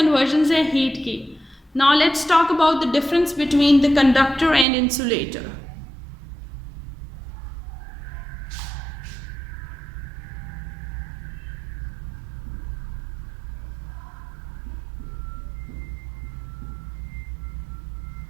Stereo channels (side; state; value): left; drops out; at 4.7 s